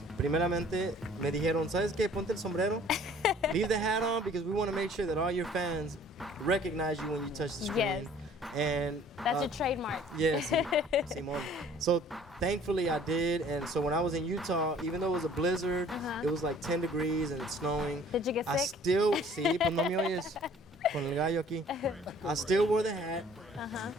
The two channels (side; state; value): both; normal; correlation 0.54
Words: movie? primeramente me dijeron, ¿sabes qué? Ponte el sombrero, leave the hat on because we want to make sure that all your fans recognize you when you touch the screen. Yes. And That's your trademark. Yes, Simon. So thankfully I did, and so when I was in Utah, even though it was a blizzard, Uh-huh. it was like 10 degrees and it's snowing. Did you get I sick? still, sí, pues no me oyes con el gallo aquí. I still wore the hat. Uh-huh.